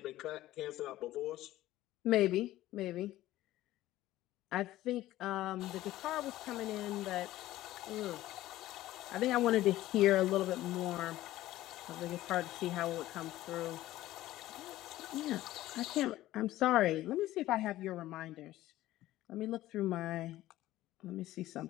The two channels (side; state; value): right; quieter; 15.4 dB